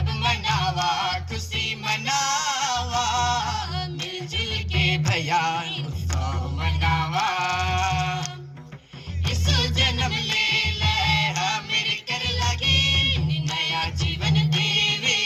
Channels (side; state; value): both; identical; correlation 1.00